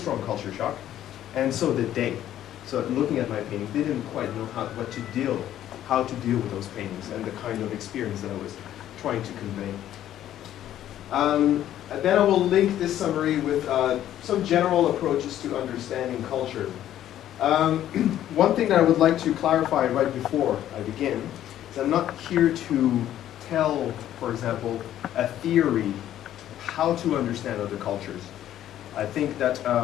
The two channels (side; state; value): right; quieter; 11.9 dB